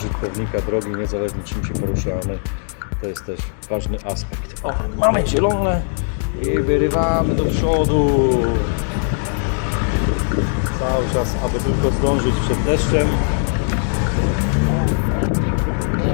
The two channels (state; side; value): silent; right; 57 dB below the other